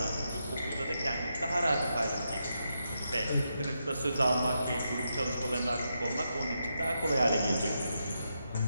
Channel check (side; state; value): both; inverted; correlation -0.84